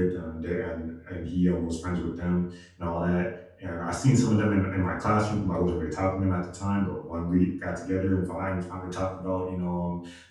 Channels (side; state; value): both; identical; correlation 1.00